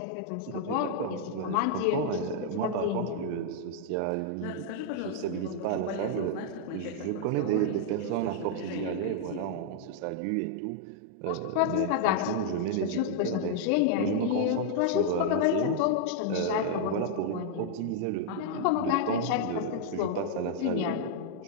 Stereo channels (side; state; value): both; different; correlation -0.01